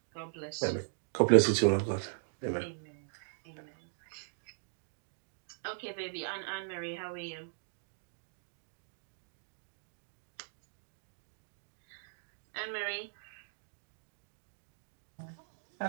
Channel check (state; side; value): silent; left; digital silence